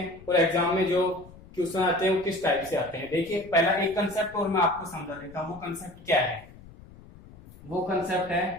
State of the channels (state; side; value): noise; left; rumble, 21 dB below the sound